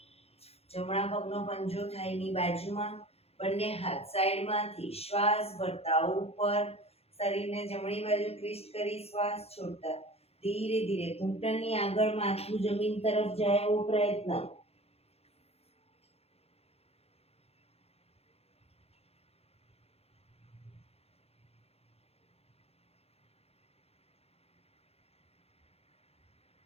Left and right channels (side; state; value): right; late; 0.29 ms